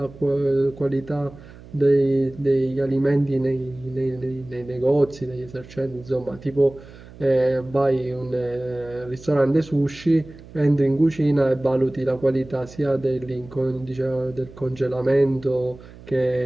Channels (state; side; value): noise; right; hum, 19 dB below the sound